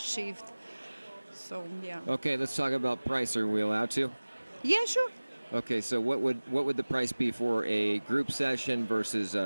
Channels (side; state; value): both; inverted; correlation -1.00